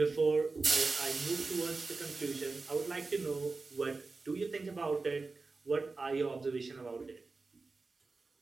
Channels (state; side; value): quieter; left; 3.9 dB